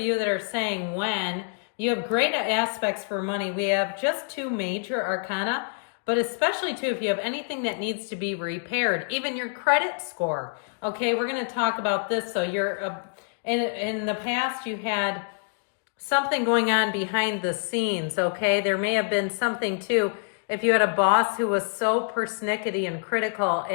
that are saying when, you have great aspects for money. We have just two major arcana, but especially too if you have anything that needs to be repaired, even your credit score. Okay, we're going to talk about this. So you're in the past you had something going on behind the scenes, okay? There may have been something too, if you had a boss who was so persnickety and critical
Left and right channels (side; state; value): right; silent; 59 dB below the other